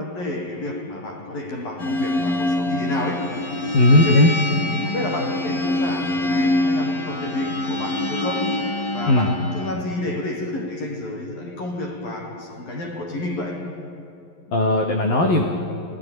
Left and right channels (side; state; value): right; late; 11 ms